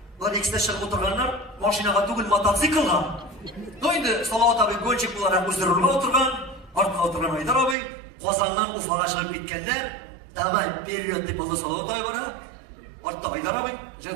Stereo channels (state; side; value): drops out; left; at 7.8 s